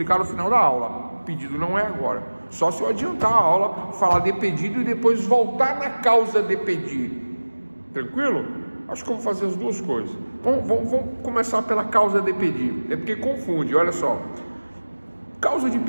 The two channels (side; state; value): both; inverted; correlation -1.00